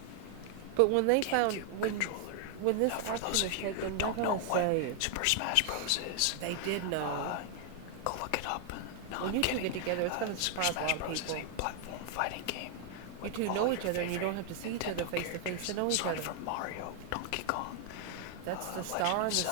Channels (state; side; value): different; both; correlation 0.00